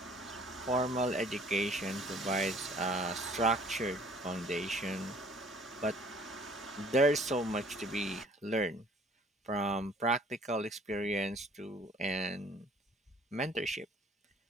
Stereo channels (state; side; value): normal; both; correlation 0.55